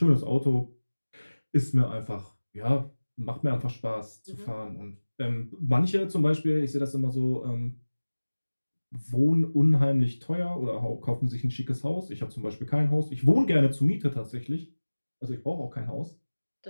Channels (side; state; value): both; inverted; correlation -1.00